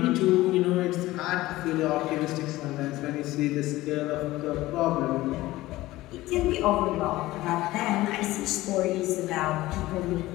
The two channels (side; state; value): right; quieter; 17.5 dB